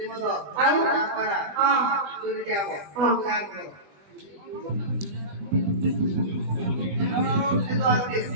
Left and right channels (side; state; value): left; late; 20 ms